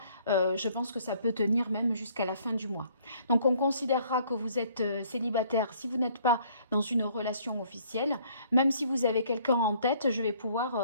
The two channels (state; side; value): inverted; both; correlation -0.61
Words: Je pense que ça peut tenir même jusqu'à la fin du mois. Donc on considérera que vous êtes célibataire si vous n'êtes pas dans une relation officielle. Même si vous avez quelqu'un en tête, je vais pouvoir